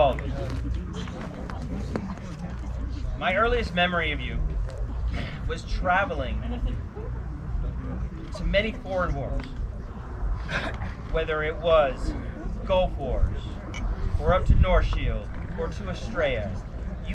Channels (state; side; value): identical; both; correlation 1.00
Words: of us. My earliest memory of you was traveling to many foreign wars, whether it was Gulf Wars, or up to North Shield, or to Estrella.